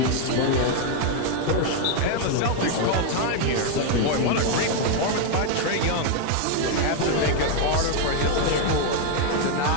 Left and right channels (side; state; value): both; different; correlation 0.01